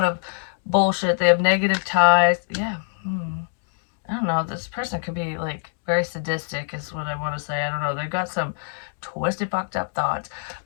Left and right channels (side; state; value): right; silent; digital silence